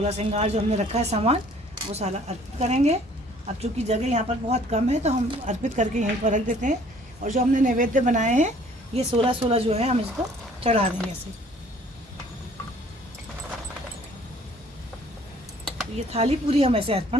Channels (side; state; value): both; normal; correlation 0.56